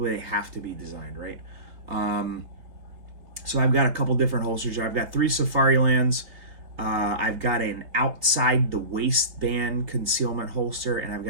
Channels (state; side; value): late; left; 3.3 ms